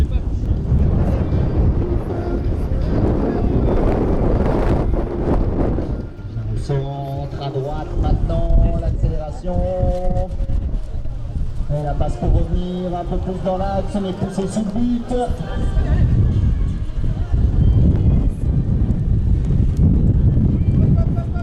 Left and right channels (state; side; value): identical; both; correlation 1.00